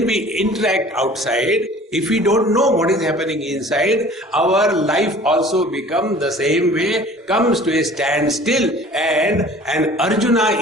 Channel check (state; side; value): normal; both; correlation 0.47